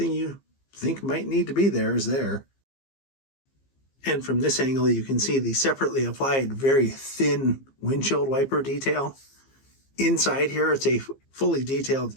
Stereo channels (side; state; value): right; late; 15 ms